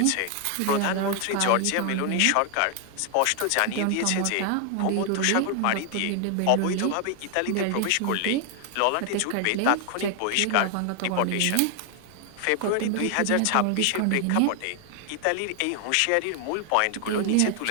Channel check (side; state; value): both; different; correlation 0.00